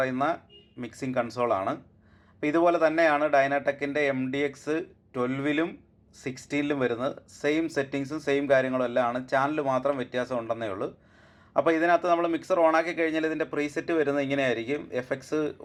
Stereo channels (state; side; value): identical; both; correlation 1.00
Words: മിക്സിംഗ് കൺസോളാണ്. അപ്പോൾ ഇതുപോലെ തന്നെയാണ് ഡൈനാടെക്കിൻ്റെ MDX12ലും 16ലും വരുന്നത്. സെയിം സെറ്റിങ്സും സെയിം കാര്യങ്ങളും എല്ലാം ആണ്. ചാനൽ മാത്രം വ്യത്യാസം ഉണ്ടെന്നേ ഉള്ളൂ. അപ്പോൾ ഇതിനകത്ത് നമ്മൾ മിക്സർ ഓണാക്കി കഴിഞ്ഞാൽ ഇതിൻ്റെ പ്രീസെറ്റ് വരുന്നത് ഇങ്ങനെയായിരിക്കും.